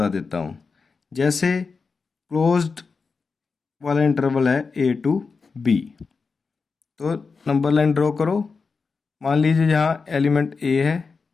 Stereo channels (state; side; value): quieter; right; 4.8 dB